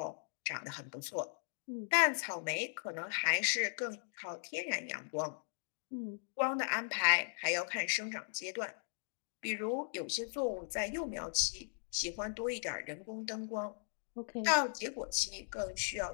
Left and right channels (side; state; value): right; silent; digital silence